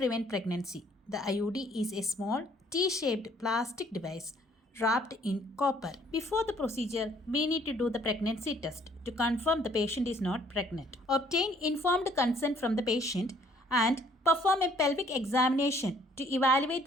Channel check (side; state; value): both; normal; correlation 0.61